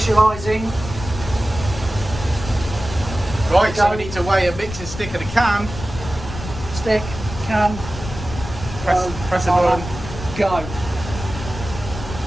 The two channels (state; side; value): noise; left; rumble, 10 dB below the sound